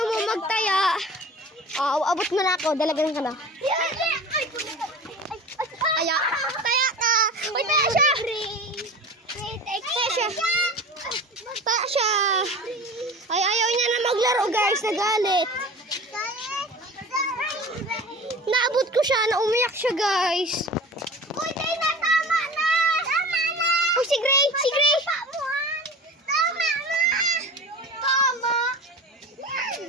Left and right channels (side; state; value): both; normal; correlation 0.36